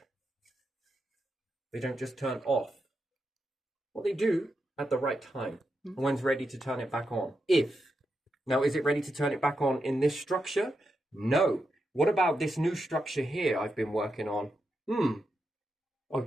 They don't just turn off. Well, they do at the right time. When's ready to turn it back on? Now, is it ready to turn it back on in this structure? No. What about this new structure here I've been working on?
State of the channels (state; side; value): normal; both; correlation 0.86